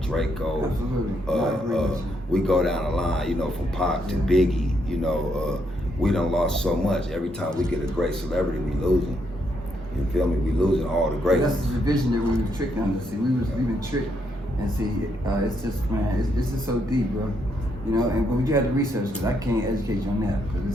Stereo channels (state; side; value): normal; both; correlation 0.76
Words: Draco. We go down the line, you know, from Pac to Biggie. You know, we done lost so much. Every time we get a great celebrity, we losing. You feel me? We losing all the great ones. That's the vision that we were tricked under. See, we've been tricked, and see, it's just, man, it's just so deep, bro. You know, and but you have to research because I can't educate you on that